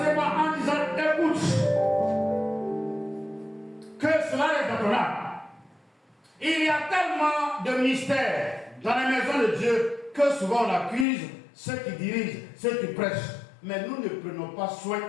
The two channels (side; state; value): right; drops out; at 11.1 s